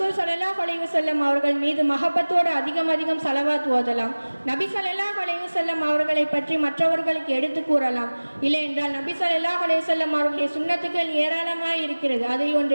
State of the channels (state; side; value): inverted; both; correlation -1.00